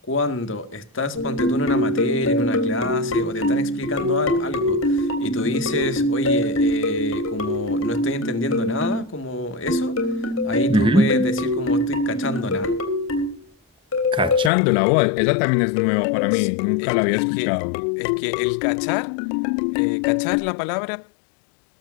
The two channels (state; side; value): drops out; right; at 14.5 s